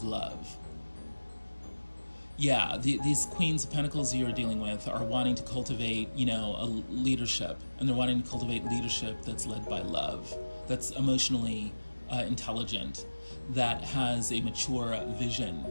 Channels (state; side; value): inverted; both; correlation -1.00